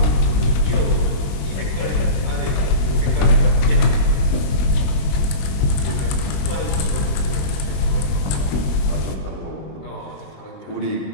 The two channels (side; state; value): right; late; 21 ms